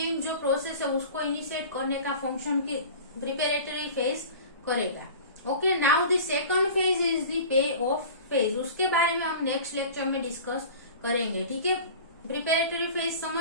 जो प्रोसेस है उसको इनिशिएट करने का फंक्शन की प्रिपेरेटरी फेज करेगा. Okay, now the second phase is the pay off phase. उसके बारे में हम नेक्स्ट लेक्चर में डिस्कस करेंगे. ठीक है, प्रिपेरेटरी फेज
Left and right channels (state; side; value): inverted; both; correlation -0.38